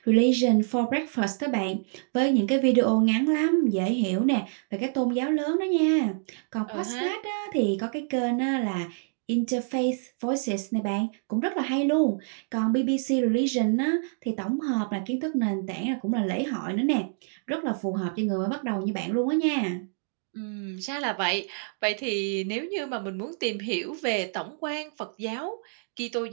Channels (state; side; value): silent; left; digital silence